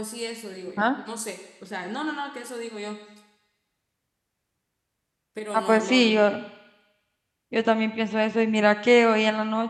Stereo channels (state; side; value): identical; both; correlation 1.00